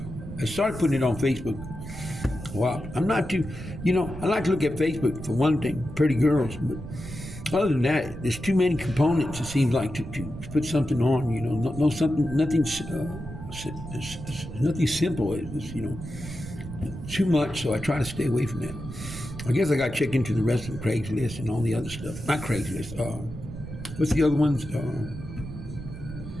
started putting it on Facebook. Wow, I'm not too. I like to look at Facebook for one thing, pretty girls, but other than that, there's too many components. It seems like to put something on. Nothing simple. It's too much, so I try to stay away from that. I guess I got to check into the rest of Craigslist and all the other stuff. Not Craigslist. What's the other ones? You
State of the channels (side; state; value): right; noise; rumble, 10 dB below the sound